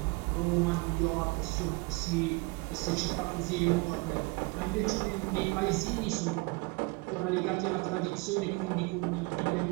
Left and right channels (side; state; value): left; quieter; 27.0 dB